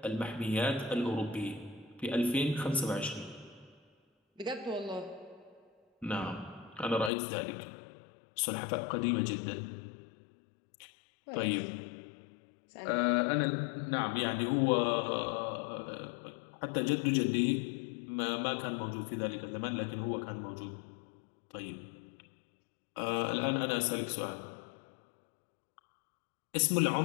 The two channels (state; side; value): drops out; right; at 7.1 s